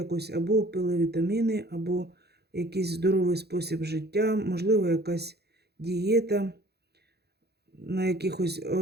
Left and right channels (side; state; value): left; late; 0.48 ms